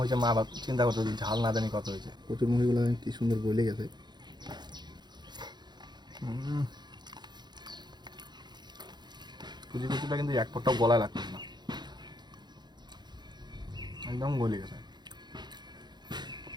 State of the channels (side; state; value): left; late; 0.21 ms